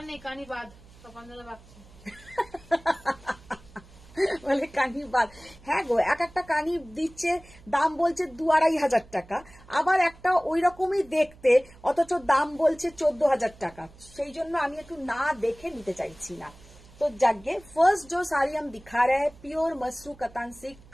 নেই, কানি বাদ, তপনদাদা বাঁচছে। বলে কানি বাদ। হ্যাঁ গো, এক একটা কানি দিচ্ছে, দাম বলছে 2-2.5 টাকা, আবার একটা ওই রকমই দেখতে, অথচ দাম বলছে 14,000 টাকা। সেই জন্য আমি একটু না দেখে নিতে চাইছি না। तो जागे फर्स्ट जो साड़ी हम दिखा रहे हैं, pure Masru Katan silk.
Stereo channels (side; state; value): right; noise; hum, 23 dB below the sound